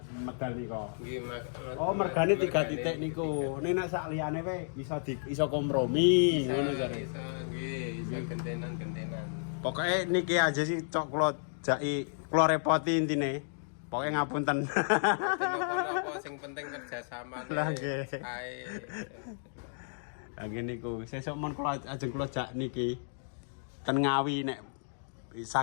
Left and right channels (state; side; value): silent; right; digital silence